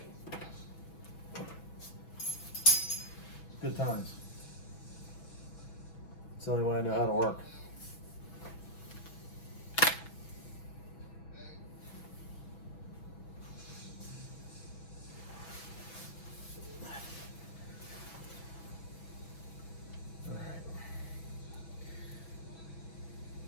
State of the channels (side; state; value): right; late; 6.1 ms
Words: Good times. It's the only way I know how to work.